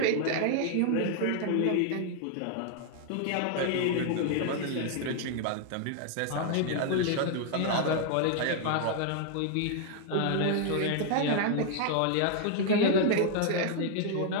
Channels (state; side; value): different; both; correlation 0.00